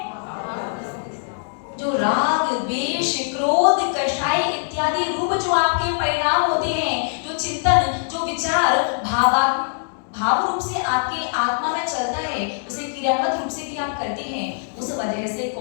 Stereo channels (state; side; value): silent; right; digital silence